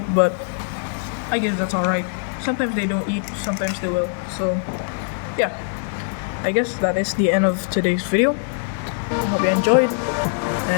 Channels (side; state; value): right; silent; 64 dB below the other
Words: but I guess that's alright. Sometimes they don't eat, sometimes they will. So yeah, I guess that is the end of today's video. Hope you enjoyed,